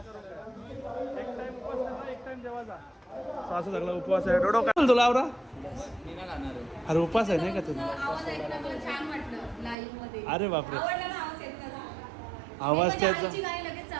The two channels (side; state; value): left; drops out; at 9.8 s